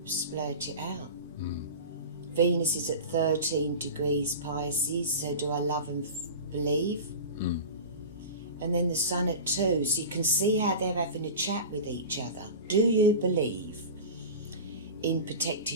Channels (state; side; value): inverted; both; correlation -0.31